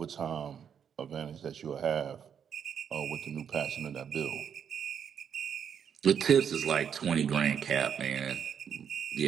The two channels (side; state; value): left; quieter; 7.9 dB